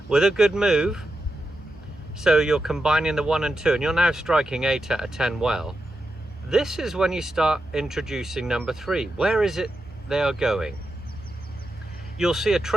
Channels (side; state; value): both; normal; correlation 0.88